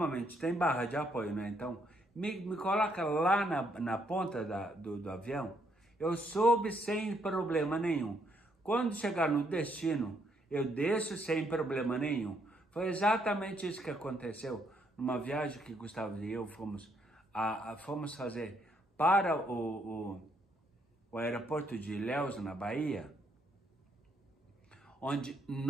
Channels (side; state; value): both; normal; correlation 0.72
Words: tem barra de apoio, né? Então, me coloca lá na ponta do avião, eu subo sem problema nenhum. Quando chegar no destino, eu desço sem problema nenhum. Foi exatamente isso que aconteceu numa viagem que Gustavo e eu fomos fazer para o aeroporto de Ilhéus, na Bahia, onde,